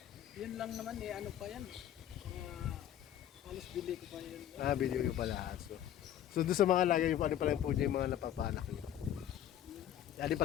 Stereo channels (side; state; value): right; quieter; 11.1 dB